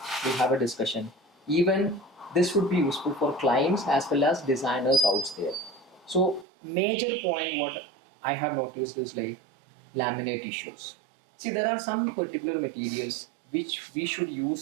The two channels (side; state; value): left; drops out; at 6.5 s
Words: we'll have a discussion. Even this would be useful for clients as well as designers out there. So major point what I have noticed is like laminate issues. See, there are some particular materials which we should